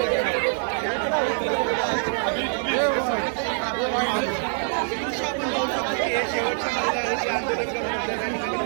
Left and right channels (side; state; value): left; silent; 59 dB below the other